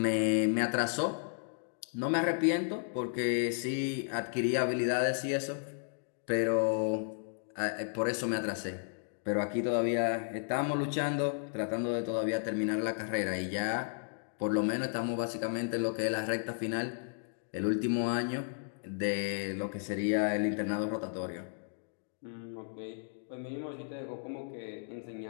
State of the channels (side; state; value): right; silent; digital silence